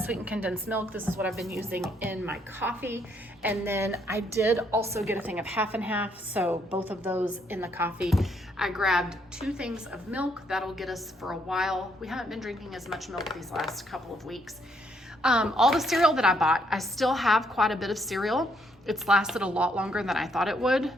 condensed milk. This is what I've been using in my coffee. And then I did also get a thing of half and half. So both of those in the coffee. I grabbed 2 things of milk. That'll get us for a while. We haven't been drinking as much milk these last couple of weeks. All the cereal that I bought, I still have quite a bit of cereal. It's lasted a lot longer than I thought it would.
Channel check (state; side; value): normal; both; correlation 0.71